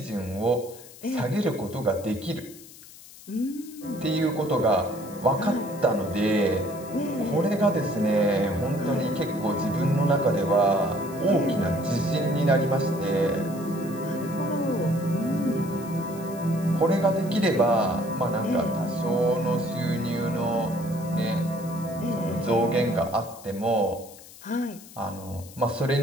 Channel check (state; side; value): noise; left; hiss, 19 dB below the sound